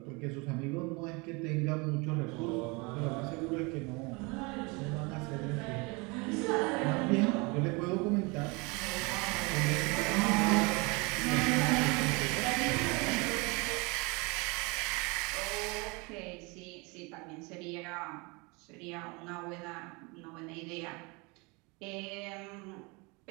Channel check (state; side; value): quieter; left; 28.1 dB